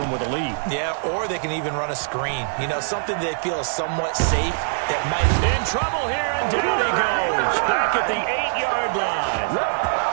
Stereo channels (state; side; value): silent; left; digital silence